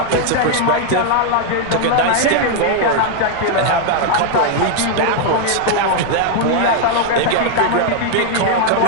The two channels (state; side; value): different; both; correlation 0.00